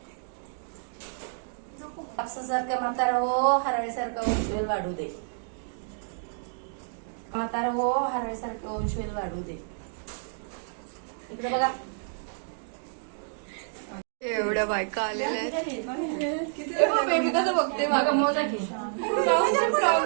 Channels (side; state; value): left; silent; digital silence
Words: सारखं म्हातारा हो, हरळीसारखं वंशवेल वाढू दे. म्हातारा हो, हरळीसारखं वंशवेल वाढू दे. इकडे बघा. एवढ्या बायका आलेल्या आहेत. बेबी कसं बघते बघा. मोजा की